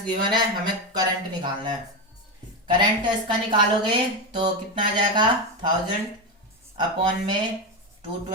गिवन है, हमें करंट निकालना है। करंट इसका निकालोगे तो कितना आ जाएगा 1000 अपॉन में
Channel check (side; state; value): both; normal; correlation 0.13